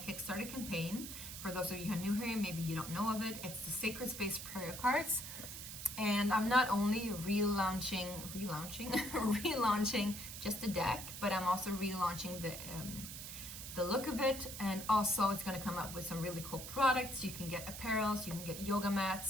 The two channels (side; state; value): right; noise; hiss, 9 dB below the sound